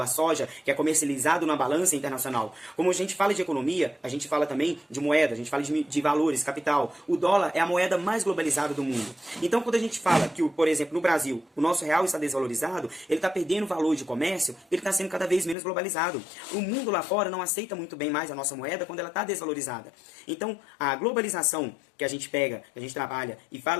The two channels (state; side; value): drops out; right; at 15.6 s